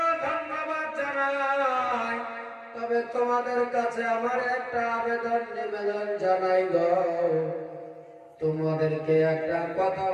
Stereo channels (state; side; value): identical; both; correlation 1.00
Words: ধন্যবাদ জানাই, তবে তোমাদের কাছে আমার একটা আবেদন নিবেদন জানাই গো। তোমাদেরকে একটা কথা